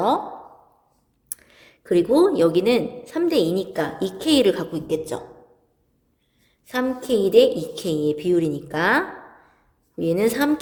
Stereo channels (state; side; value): identical; both; correlation 1.00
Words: 그리고 여기는 3대 2니까 2K를 갖고 있겠죠. 3K 대 2K의 비율이니까 얘는